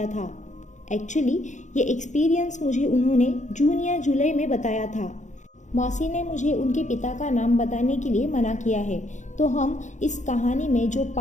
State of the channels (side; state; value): right; late; 0.35 ms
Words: था। एक्चुअली ये एक्सपीरियंस मुझे उन्होंने जून या जुलाई में बताया था। मौसी ने मुझे उनके पिता का नाम बताने के लिए मना किया है, तो हम इस कहानी में जो